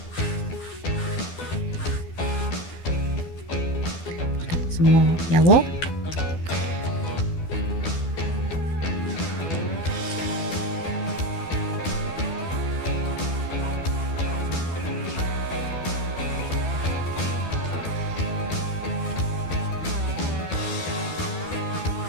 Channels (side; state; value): right; late; 12 ms